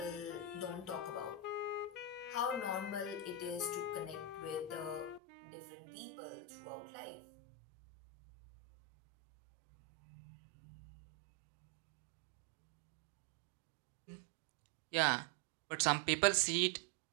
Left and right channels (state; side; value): drops out; left; at 5.2 s